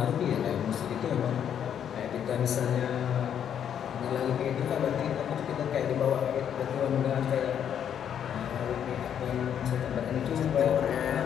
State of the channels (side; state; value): right; quieter; 9.0 dB